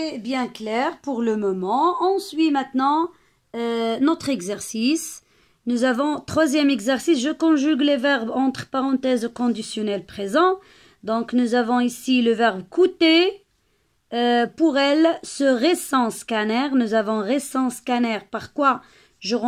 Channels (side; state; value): both; identical; correlation 1.00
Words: bien clair pour le moment. On suit maintenant notre exercice. Nous avons troisième exercice, je conjugue les verbes entre parenthèses au conditionnel présent. Donc nous avons ici le verbe coûter. Pour elle, ce récent scanner, nous avons récent scanner. Par quoi je